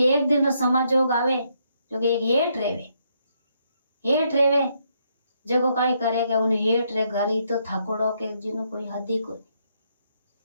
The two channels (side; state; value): both; inverted; correlation -0.75